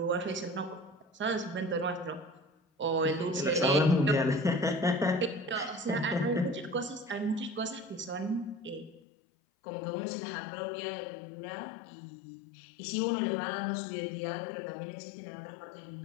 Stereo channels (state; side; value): drops out; right; at 9.0 s